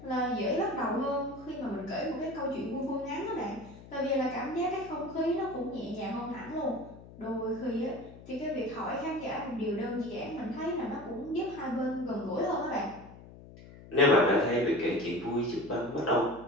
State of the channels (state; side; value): noise; left; hum, 18 dB below the sound